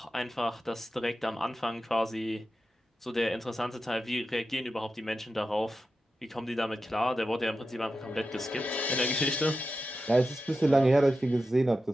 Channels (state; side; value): normal; both; correlation 0.91